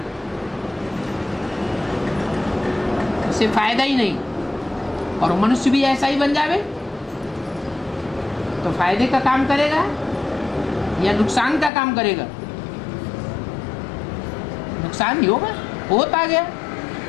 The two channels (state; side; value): drops out; right; at 11.7 s